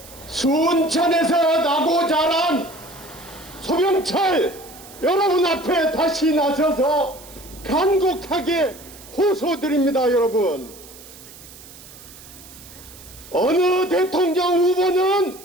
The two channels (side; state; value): right; noise; hiss, 19 dB below the sound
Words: 순천에서 나고 자란 서병철 여러분 앞에 다시 나서서 간곡하게 호소드립니다. 여러분, 어느 대통령 후보는